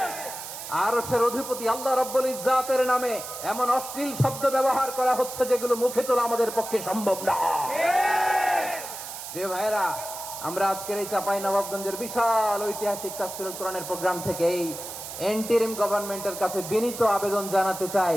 আরশের অধিপতি আল্লাহ রাব্বুল ইজ্জাতের নামে এমন অশ্লীল শব্দ ব্যবহার করা হচ্ছে যেগুলো মুখে তোলা আমাদের পক্ষে সম্ভব না। প্রিয় ভাইরা, আমরা আজকের এই চাঁপাইনবাবগঞ্জের বিশাল ঐতিহাসিক তাফসীরুল কোরআনের প্রোগ্রাম থেকে এই এন্টিরিম গভর্নমেন্টের কাছে বিনীত আবেদন জানাতে চাই,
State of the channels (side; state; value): right; noise; hiss, 10 dB below the sound